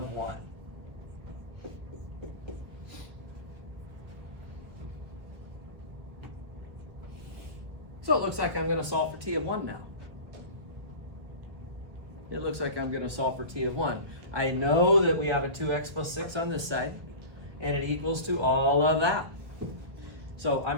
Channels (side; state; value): left; late; 1.5 ms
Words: 1. So it looks like I'm going to solve for t of 1 now. It looks like I'm going to solve for t of 1. I know that we have a 2x plus 6 on this side, and it equals to all of that. So I'm